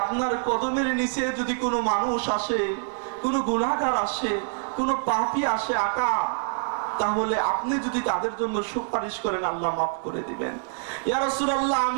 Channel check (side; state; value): left; silent; digital silence